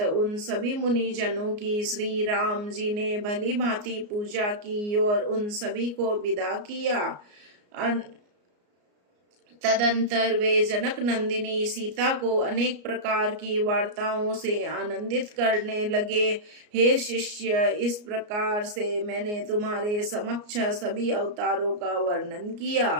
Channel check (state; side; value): late; left; 34 ms